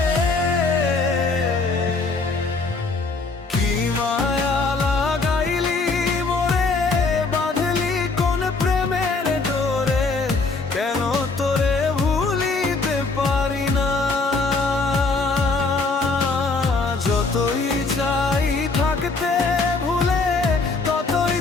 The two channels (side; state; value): right; quieter; 3.9 dB